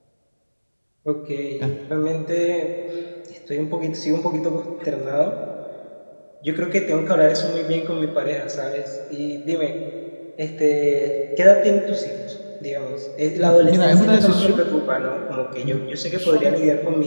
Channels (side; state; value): both; inverted; correlation -1.00